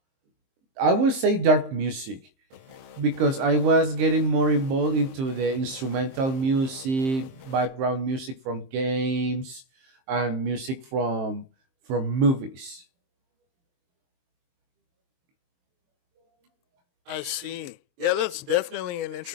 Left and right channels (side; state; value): left; late; 23 ms